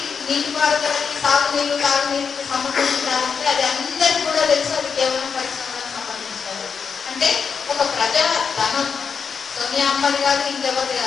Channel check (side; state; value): right; quieter; 6.1 dB